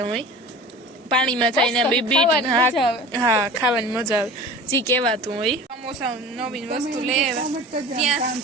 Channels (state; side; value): normal; both; correlation 0.38